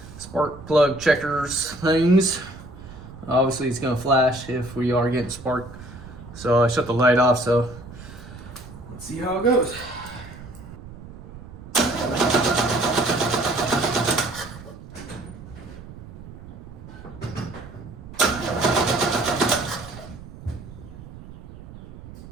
spark plug checkers things. Obviously it's gonna flash if we are getting spark. So I shut the light off, so let's see how it goes.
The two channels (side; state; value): right; noise; rumble, 15 dB below the sound